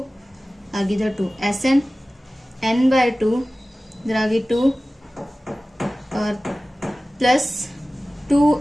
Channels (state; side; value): normal; both; correlation 0.97